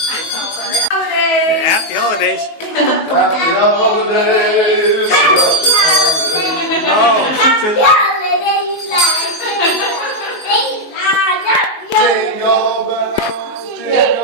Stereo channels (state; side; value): late; right; 19 ms